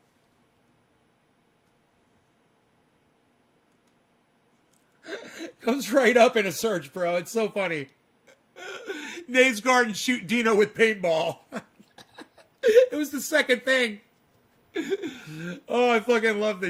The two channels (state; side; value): identical; both; correlation 1.00